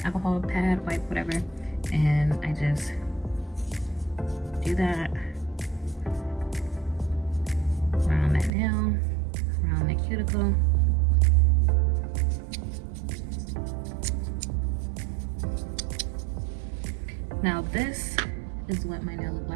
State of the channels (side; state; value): left; drops out; at 8.5 s